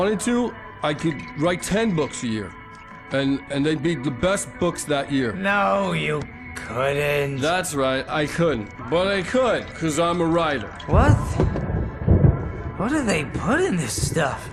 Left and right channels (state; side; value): identical; both; correlation 1.00